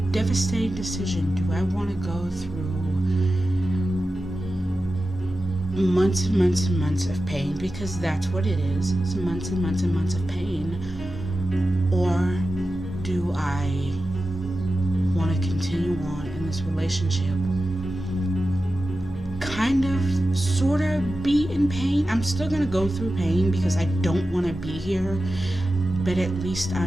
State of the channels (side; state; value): both; normal; correlation 0.93